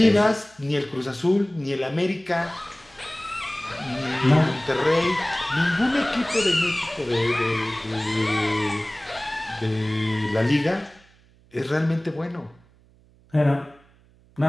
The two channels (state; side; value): noise; right; hum, 30 dB below the sound